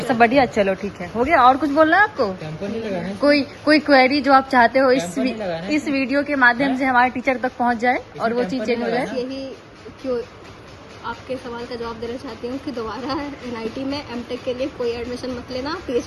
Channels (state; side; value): identical; both; correlation 1.00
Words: सब बढ़िया। चलो ठीक है, हो गया। और कुछ बोलना है आपको? कोई क्वेरी जो आप चाहते हो इस वीडियो के माध्यम से हमारे टीचर तक पहुंच जाए और वो चीज चेंज हो जाए। यही क्यों आपके सवाल का जवाब देना चाहती हूँ कि दोबारा NIT में M.Tech के लिए कोई एडमिशन मत लेना,